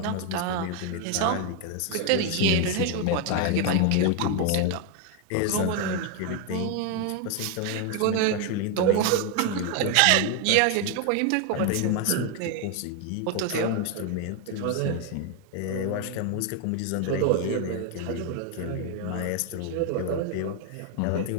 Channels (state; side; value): different; both; correlation 0.01